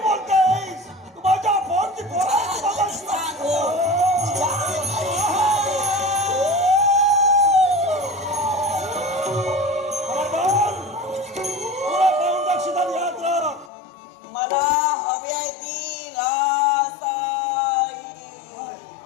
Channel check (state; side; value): drops out; right; at 13.7 s